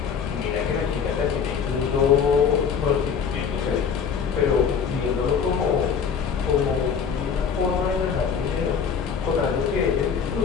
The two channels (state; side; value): quieter; right; 6.6 dB